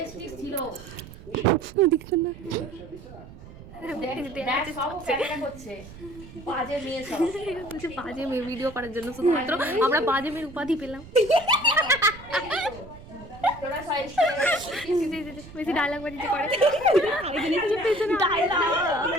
ছিল, দেখছেন না? দেখ সব ক্যামেরা করছে, বাজে মেয়ে সব। বলছে বাজে মেয়ে ভিডিও করার জন্য, শুধুমাত্র আমরা বাজে মেয়ের উপাধি পেলাম। তোরা বেশি ডায়লগ বাজিতে করে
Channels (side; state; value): right; noise; rumble, 17 dB below the sound